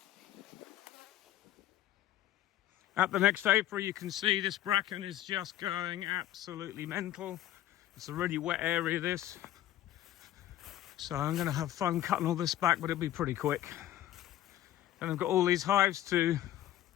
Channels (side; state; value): right; quieter; 12.9 dB